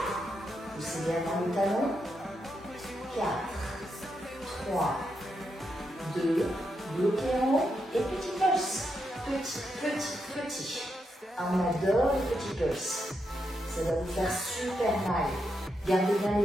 Poussez bien dans le talon. 4, 3, 2, bloquez en haut et petit pulse. Petit. On adore les petits pulses. Ça va vous faire super mal. Gardez bien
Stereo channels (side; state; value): both; normal; correlation 0.83